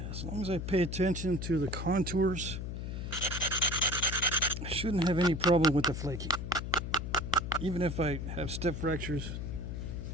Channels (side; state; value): left; noise; hum, 5 dB below the sound